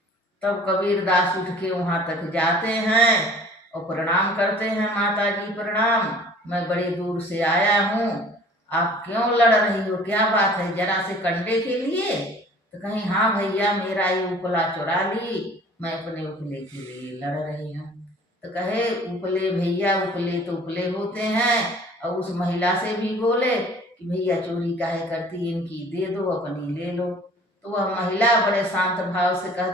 तब कबीरदास उठ के वहां तक जाते हैं और प्रणाम करते हैं, माता जी प्रणाम, मैं बड़े दूर से आया हूँ, आप क्यों लड़ रही हो? क्या बात है? जरा से कंडे के लिए? तो कहीं, हाँ भैया, मेरा ये उपला चुरा ली, मैं अपने उपले के लिए लड़ रही हूँ। तो कहे, उपले भैया, उपले तो उपले होते हैं। और उस महिला से भी बोले कि भैया, चोरी काहे करती, इनकी दे दो, अपनी ले लो। तो वह महिला बड़े शांत भाव से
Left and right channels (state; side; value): normal; both; correlation 0.49